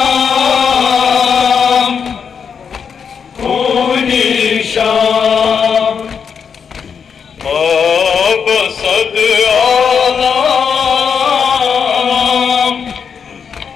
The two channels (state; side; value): quieter; right; 6.6 dB